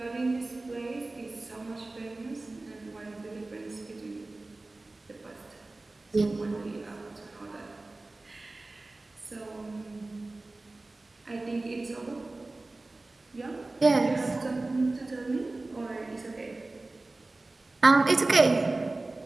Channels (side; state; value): left; quieter; 3.1 dB